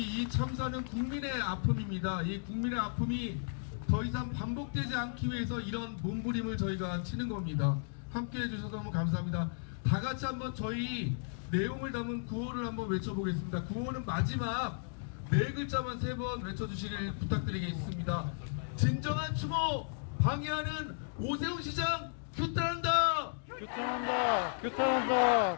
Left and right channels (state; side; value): silent; right; digital silence